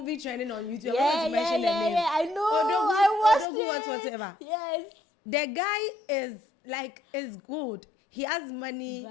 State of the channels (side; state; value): right; drops out; at 3.5 s